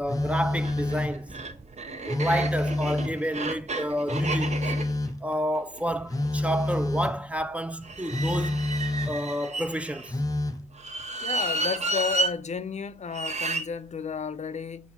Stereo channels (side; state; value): right; noise; hum, 29 dB below the sound